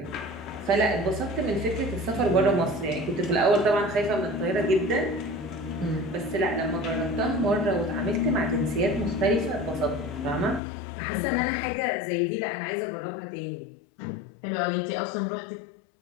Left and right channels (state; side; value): drops out; right; at 10.6 s